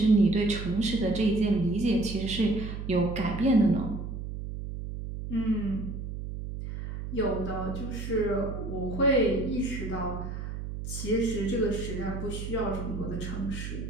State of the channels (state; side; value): noise; right; hum, 7 dB below the sound